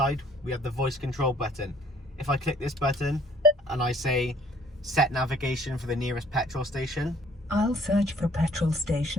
we have the voice control button. If I click this button and I say set navigation for the nearest petrol station, I'll search for petrol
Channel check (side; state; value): both; normal; correlation 0.58